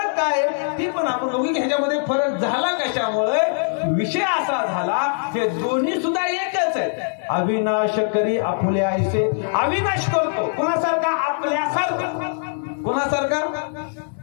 काय? ती पण आपण दोघी ह्याच्यामध्ये फरक झाला कशामुळे? विषय असा झाला, हे दोन्ही सुद्धा एकच आहेत. अविनाश करी आपुल्या आईसे. अविनाश करतो कोणासारखा? आपल्यासारखा. कोणासारखा?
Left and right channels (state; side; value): silent; right; digital silence